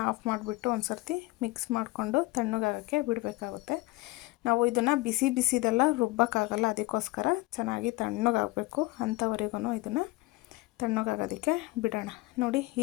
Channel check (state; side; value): quieter; right; 20.9 dB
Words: ಆಫ್ ಮಾಡಿಬಿಟ್ಟು ಒಂದು ಸರ್ತಿ ಮಿಕ್ಸ್ ಮಾಡಿಕೊಂಡು ತಣ್ಣಗಾಗೋಕ್ಕೆ ಬಿಡಬೇಕಾಗುತ್ತೆ. ನಾವು ಇದನ್ನು ಬಿಸಿದೆಲ್ಲ ರುಬ್ಬೋಕ್ಕಾಗಲ್ಲ, ಅದಕ್ಕೋಸ್ಕರ ಚೆನ್ನಾಗಿ ತಣ್ಣಗಾಗಬೇಕು. ಅಂಥವರೆಗೂ ಇದನ್ನು ತಣ್ಣಗಾಗೋದಕ್ಕೆ ಬಿಡೋಣ. ನೋಡಿ,